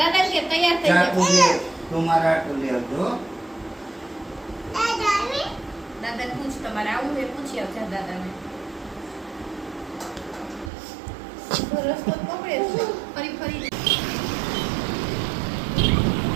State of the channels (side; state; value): left; drops out; at 10.7 s